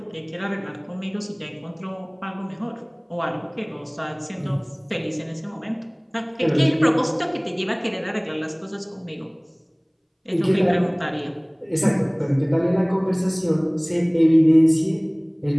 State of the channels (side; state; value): both; identical; correlation 1.00